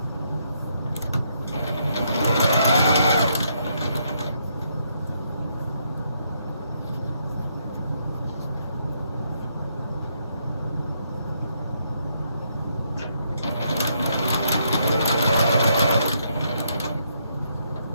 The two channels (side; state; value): both; inverted; correlation -0.75